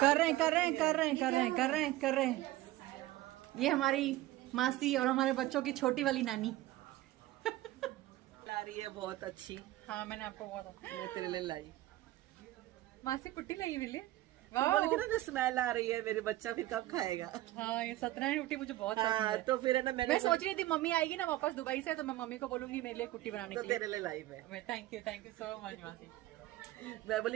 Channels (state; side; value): quieter; left; 16.3 dB